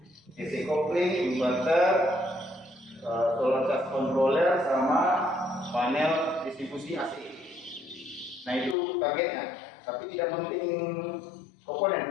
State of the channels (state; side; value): drops out; right; at 8.8 s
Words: DC kopling, inverter, solar charge controller sama panel distribusi AC. Nah itu targetnya, tapi tidak mounting